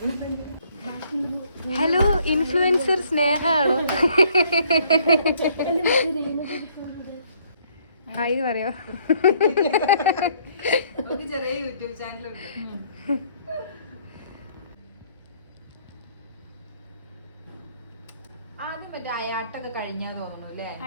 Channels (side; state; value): both; inverted; correlation -0.64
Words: Hello, influencer സ്നേഹാണോ? ഹായ് പറയോ? ചെറിയ യൂട്യൂബ് ചാനലുണ്ട്. ആദ്യം മറ്റേ അയാട്ടൊക്കെ കഴിഞ്ഞാ തോന്നുന്നു അല്ലേ?